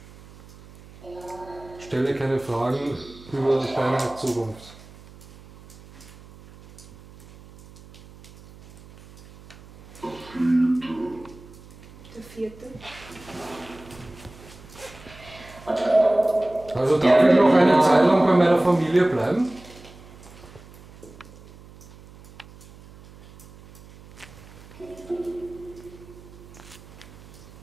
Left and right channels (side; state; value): right; noise; hum, 21 dB below the sound